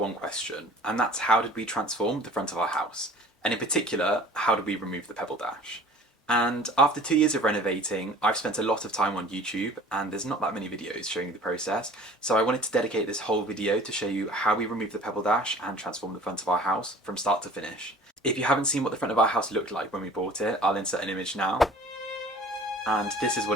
question, and that's how did we transform the front of our house? And in particular, how did we remove the Pebbledash? And after 2 years of renovating, I've spent a lot of time on YouTube, and there's not that many videos showing the process, so I wanted to dedicate this whole video to show you how we removed the Pebbledash and transformed the front of our house from start to finish. If you haven't seen what the front of our house looked like when we bought it, I'll insert an image now. And this is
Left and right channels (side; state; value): both; normal; correlation 0.47